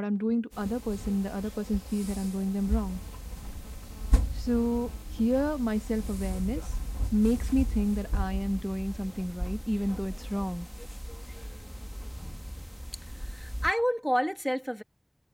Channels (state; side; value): identical; both; correlation 1.00